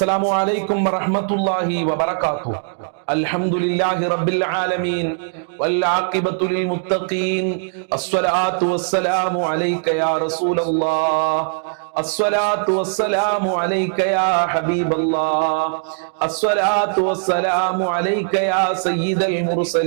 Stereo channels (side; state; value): left; silent; digital silence